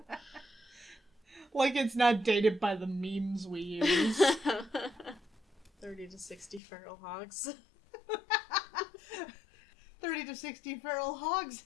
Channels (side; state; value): right; drops out; at 6.6 s